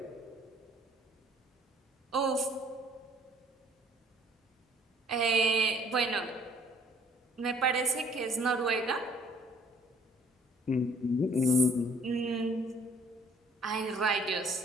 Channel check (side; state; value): both; normal; correlation 0.59